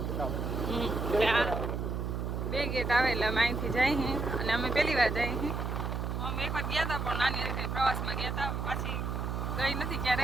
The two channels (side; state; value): right; noise; hum, 2 dB below the sound